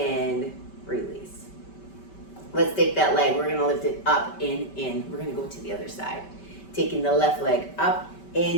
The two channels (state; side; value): late; right; 5.2 ms